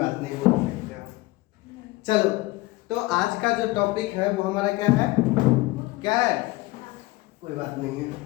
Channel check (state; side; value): quieter; right; 20.4 dB